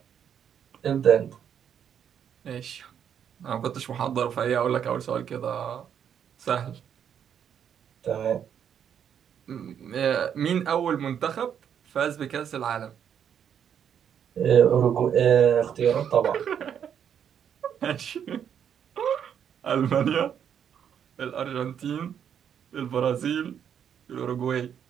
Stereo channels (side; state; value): left; quieter; 8.6 dB